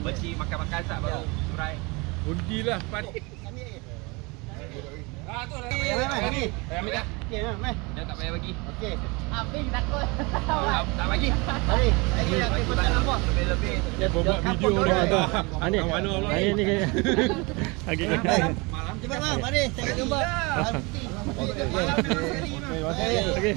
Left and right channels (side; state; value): left; quieter; 27.3 dB